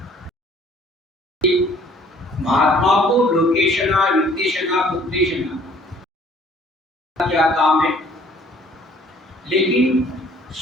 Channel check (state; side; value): normal; both; correlation 0.57